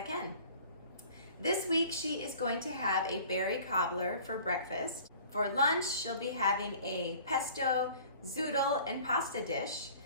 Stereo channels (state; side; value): inverted; both; correlation -0.48